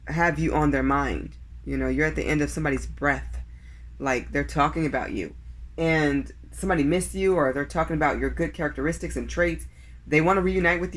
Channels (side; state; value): both; identical; correlation 1.00